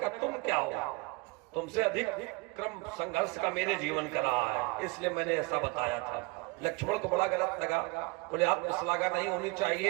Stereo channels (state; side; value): quieter; left; 27.0 dB